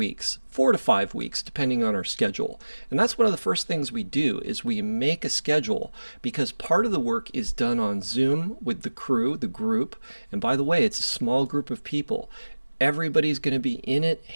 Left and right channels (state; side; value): inverted; both; correlation -1.00